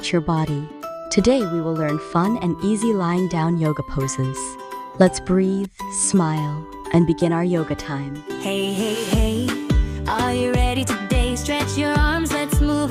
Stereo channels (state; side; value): identical; both; correlation 1.00